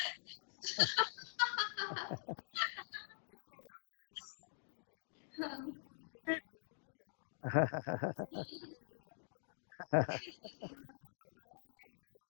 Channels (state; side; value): silent; right; digital silence